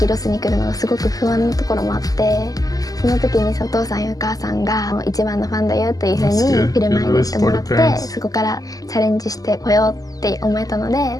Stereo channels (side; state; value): right; late; 0.17 ms